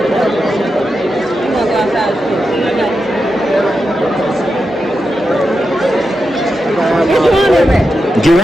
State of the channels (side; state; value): both; normal; correlation 0.88